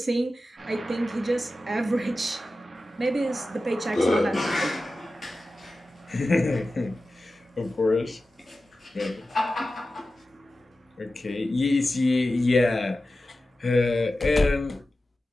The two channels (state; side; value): normal; both; correlation 0.94